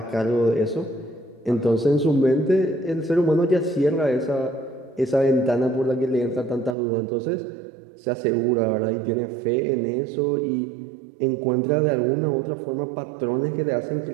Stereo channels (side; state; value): left; drops out; at 6.8 s